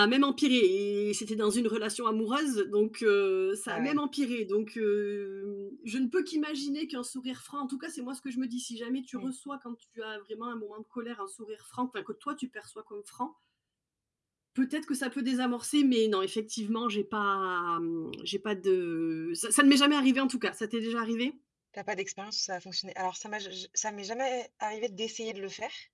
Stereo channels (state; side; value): identical; both; correlation 1.00